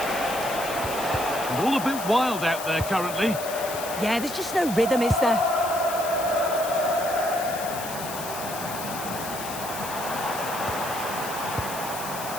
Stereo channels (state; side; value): noise; left; hiss, 9 dB below the sound